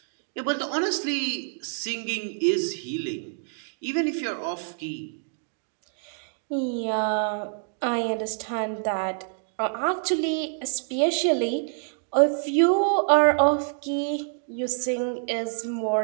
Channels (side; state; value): left; silent; digital silence